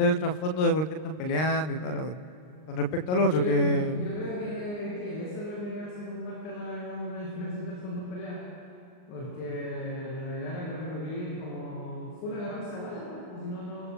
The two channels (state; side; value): late; right; 39 ms